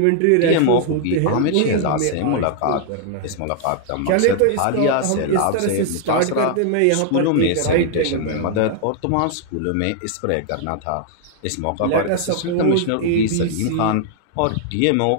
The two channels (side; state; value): both; different; correlation 0.00